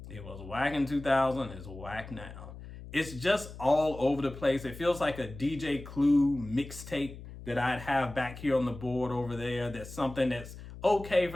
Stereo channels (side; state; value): left; noise; hum, 14 dB below the sound